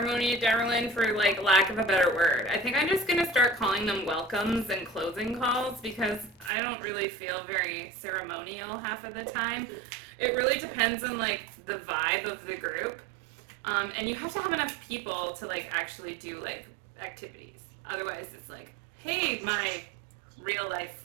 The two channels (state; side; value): drops out; left; at 6.5 s